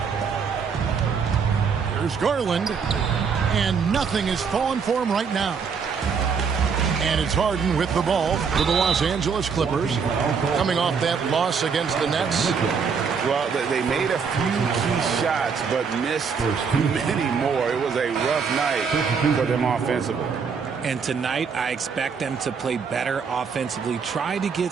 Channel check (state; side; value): quieter; left; 5.9 dB